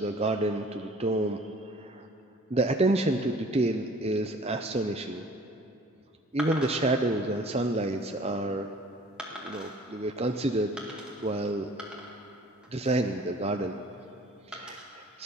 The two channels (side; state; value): both; normal; correlation 0.51